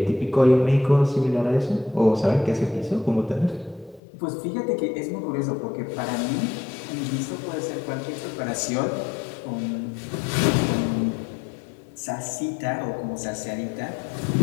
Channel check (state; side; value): drops out; right; at 4.0 s